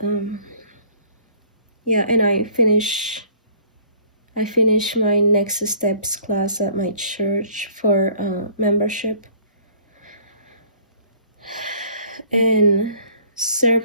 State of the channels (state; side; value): inverted; both; correlation -0.55